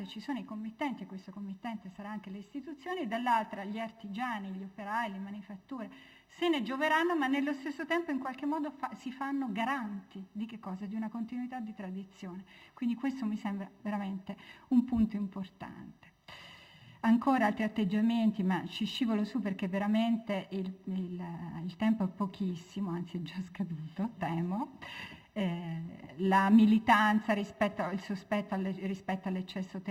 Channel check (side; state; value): both; identical; correlation 1.00